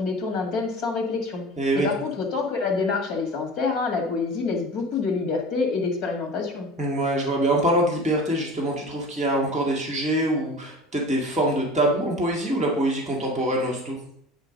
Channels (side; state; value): both; normal; correlation 0.37